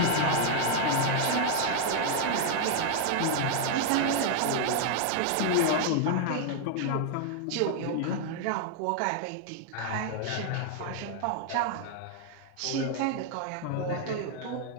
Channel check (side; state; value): both; different; correlation 0.00